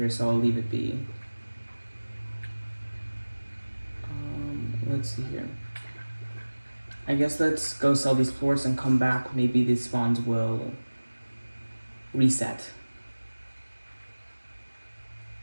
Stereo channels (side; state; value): both; inverted; correlation -1.00